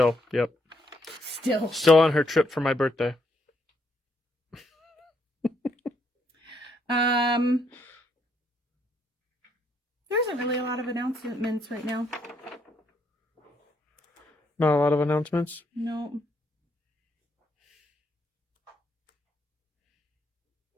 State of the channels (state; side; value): normal; both; correlation 0.74